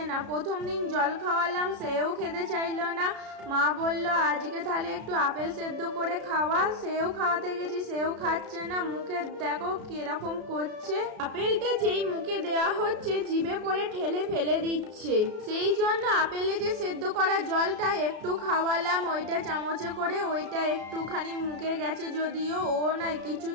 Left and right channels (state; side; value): late; left; 33 ms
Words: না। প্রথম দিন জল খাওয়ালাম, সেও খেতে চাইলো না। মা বললো আজকে তাহলে একটু আপেল সেদ্ধ করে খাওয়া। সেও খাওয়াতে গেছি, সেও খাচ্ছে না। মুখে দেখো কিরকম করছে। আপেলটা যেই মুখে দেওয়া হচ্ছে জিভে করে ঠেলে ফেলে দিচ্ছে। সেই জন্য আপেলে যে সেদ্ধ করা জলটা একটু খাওয়ালাম, ওইটা চামচে করে, ওইটা একটুখানি মুখে গেছে। যদিও ও না কিছু